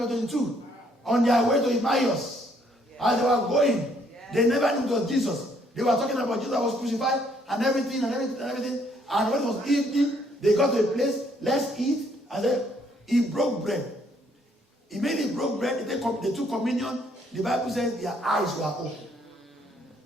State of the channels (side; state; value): both; normal; correlation 0.67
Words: 22, on their way to Emmaus, as they were going, they never knew it was Jesus. They were talking about Jesus was crucified and everything. And when it was evening, they got to a place, let's eat. And then he broke bread. Immediately broke bread, they took communion. The Bible says their eyes were open.